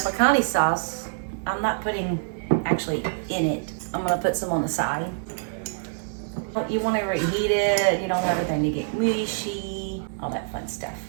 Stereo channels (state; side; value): silent; left; 61 dB below the other